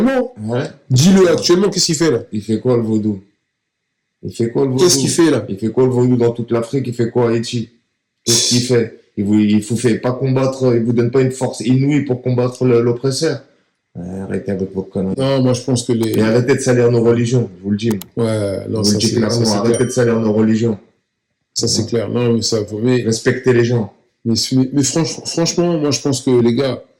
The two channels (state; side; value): identical; both; correlation 1.00